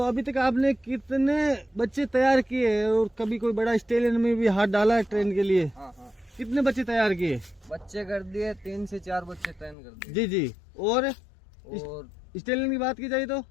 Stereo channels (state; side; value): drops out; right; at 9.8 s